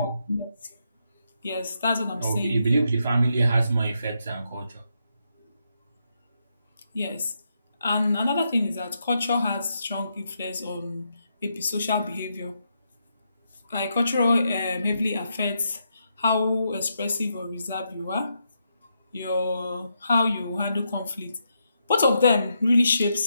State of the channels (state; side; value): inverted; both; correlation -0.81